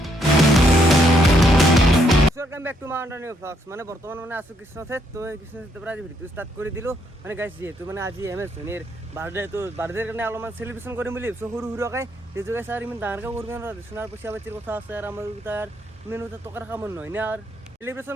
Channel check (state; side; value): normal; both; correlation 0.73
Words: welcome back to mountain new blogs মানে বর্তমান মানে আছো কৃষ্ণথেত তো এই কৃষ্ণথেতৰ পৰা আজি ভিডিঅ স্টাৰ্ট কৰি দিলোঁ মানে গাইছ যিহেতু মানে আজি MS ধোনীৰ বাৰ্থডেৰ কাৰণে অলপমান চেলিব্ৰেশ্যন কৰিম বুলি ভাবিছোঁ সৰু সৰুকৈ সেইটো গাইছ আৰু ইমান ডাঙৰকৈ কৰিব নোৱাৰোঁ সোণাৰ পইচা পাতিৰ কথা আছে আৰু আমাৰ তাৰ ইমান টকাৰ কামত নহয় না আৰু চেলিব্ৰেশ্যন